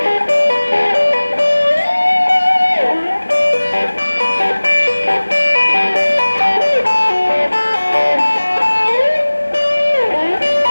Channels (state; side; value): inverted; both; correlation -1.00